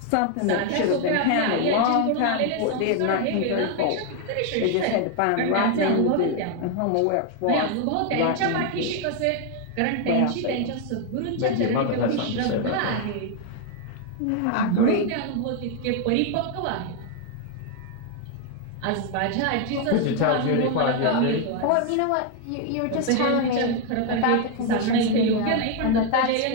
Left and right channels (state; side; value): different; both; correlation 0.01